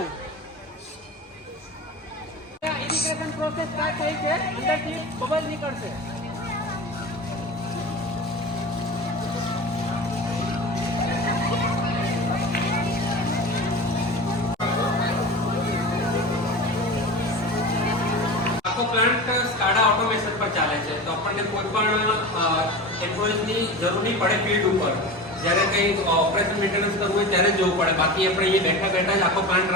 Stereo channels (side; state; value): both; normal; correlation 0.30